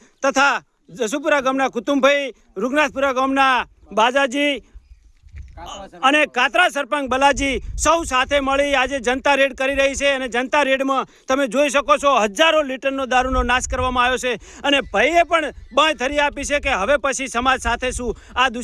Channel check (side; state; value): both; identical; correlation 1.00